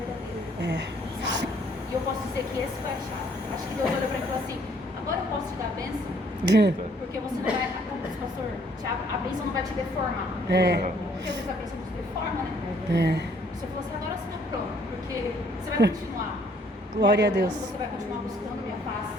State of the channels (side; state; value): both; normal; correlation 0.63